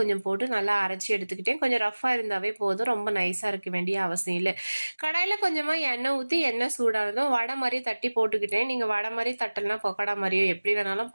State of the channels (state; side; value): inverted; both; correlation -1.00